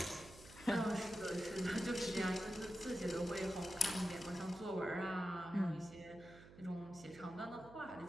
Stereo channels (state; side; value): noise; right; hum, 18 dB below the sound